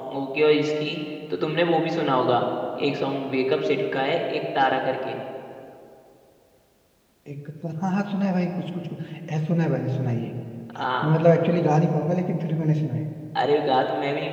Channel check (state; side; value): identical; both; correlation 1.00